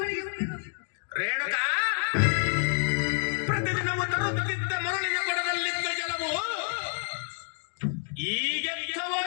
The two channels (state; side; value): silent; right; 58 dB below the other